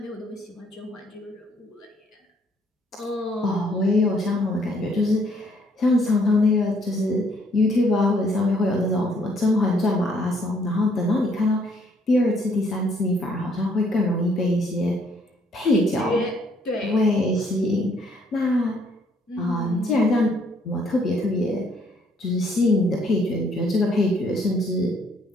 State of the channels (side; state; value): both; normal; correlation 0.66